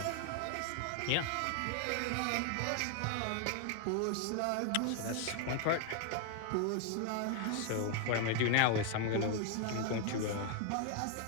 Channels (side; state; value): both; different; correlation 0.00